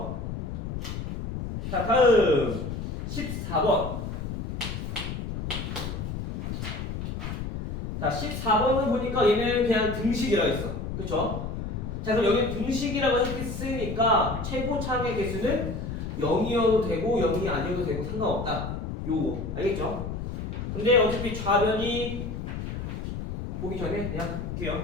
자, 다음 14번. 자, 14번을 보니까 얘는 그냥 등식이라고 했어. 그쵸? 자, 그럼 여기 등식이라고 했으니까 최고차항의 개수는 0이어도 되고 0이 아니어도 되고 상관없다. 요거 알겠죠? 근데 어차피 좌변이 보기 전에 그냥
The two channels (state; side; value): noise; left; rumble, 5 dB below the sound